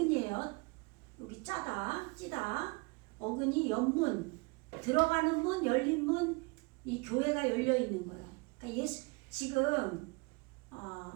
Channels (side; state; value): left; quieter; 28.7 dB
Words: 여기 짜다 찌다 어근이 옆문 들어가는 문 열린 문 이 교회가 열려 있는 거야. 그러니까 지금